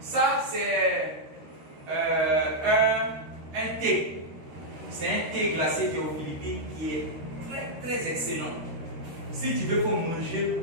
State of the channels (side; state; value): left; late; 13 ms